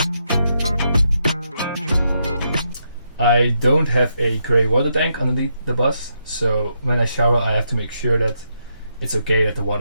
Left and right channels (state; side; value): inverted; both; correlation -0.80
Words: I don't have a grey water tank underneath the bus, so when I shower I have to make sure that it's okay that the